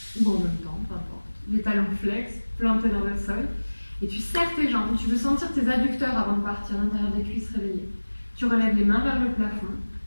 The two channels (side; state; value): both; inverted; correlation -1.00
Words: ou en même temps, peu importe. Les talons flex, plantés dans le sol. Et tu serres tes jambes. Tu veux sentir tes adducteurs avant de partir, l'intérieur des cuisses réveillées. Tu relèves les mains vers le plafond.